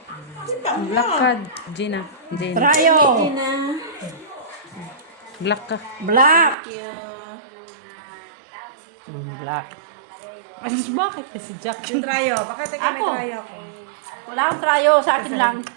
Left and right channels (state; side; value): drops out; left; at 6.6 s